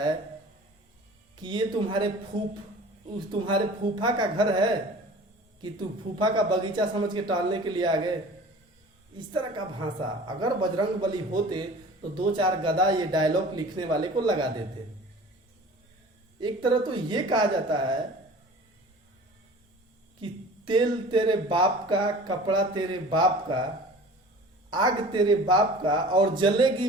कि ये तुम्हारे फूफा का घर है कि तू फूफा का बगीचा समझ के टहलने के लिए आ गए। इस तरह का भाषा अगर बजरंग बली होते तो 2-4 गदा ये डायलॉग लिखने वाले को लगा देते। एक तरह तो ये कहा जाता है कि तेल तेरे बाप का, कपड़ा तेरे बाप का, आग तेरे बाप का और जलेगी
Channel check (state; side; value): normal; both; correlation 0.43